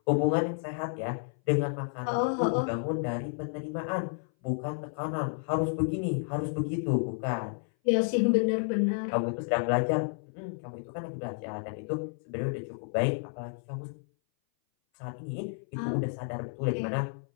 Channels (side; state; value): right; silent; 57 dB below the other